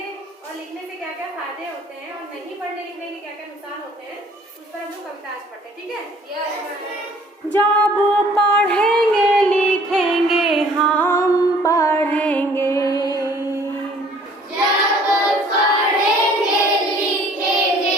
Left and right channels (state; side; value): normal; both; correlation 0.56